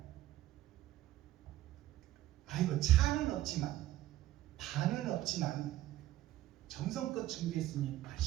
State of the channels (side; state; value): left; quieter; 14.6 dB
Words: 아이고, 차는 없지만, 반은 없지만 정성껏 준비했으니